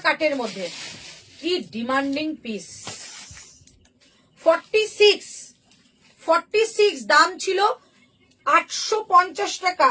কাটের মধ্যে কি ডিমান্ডিং পিস। 46 দাম ছিল 850 টাকা,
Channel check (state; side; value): identical; both; correlation 1.00